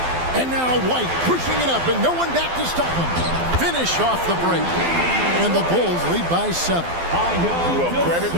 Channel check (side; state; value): left; late; 12 ms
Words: And now White pushing it up, and no one back to stop him. Finish off the break. And the Bulls lead by 7. Well, credit